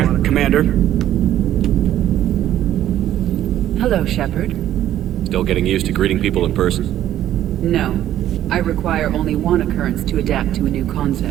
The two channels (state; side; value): quieter; left; 12.2 dB